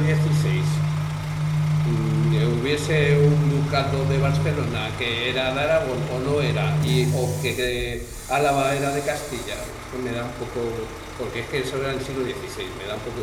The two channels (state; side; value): identical; both; correlation 1.00